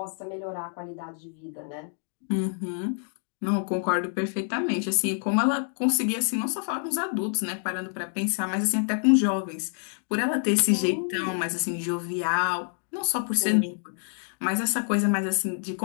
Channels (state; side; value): silent; right; 60 dB below the other